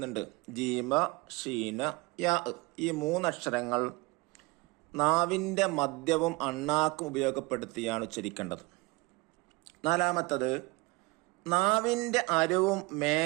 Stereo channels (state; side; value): quieter; left; 23.7 dB